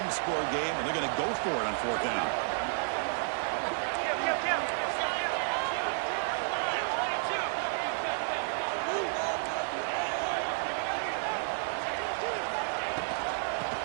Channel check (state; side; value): silent; left; 57 dB below the other